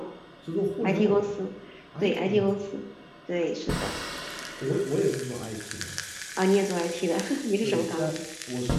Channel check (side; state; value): both; identical; correlation 1.00